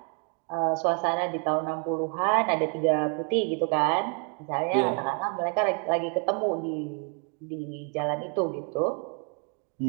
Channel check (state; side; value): quieter; left; 39.3 dB